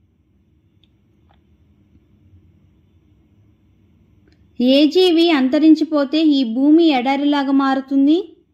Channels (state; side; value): identical; both; correlation 1.00